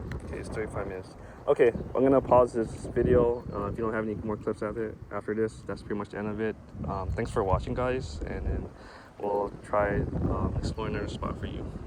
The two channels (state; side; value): identical; both; correlation 1.00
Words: Okay, it's 35 minutes. Okay, I'm gonna pause this video. If you don't have any more clips after this, that's pretty much the end of it. Thanks for watching, guys, and then we'll try exploring another spot for you.